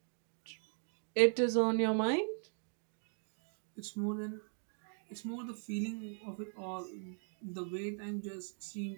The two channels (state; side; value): silent; left; 52 dB below the other